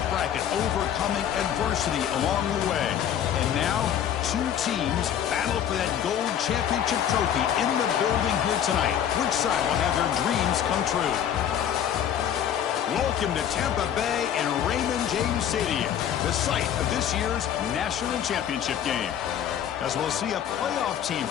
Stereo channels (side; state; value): right; quieter; 9.7 dB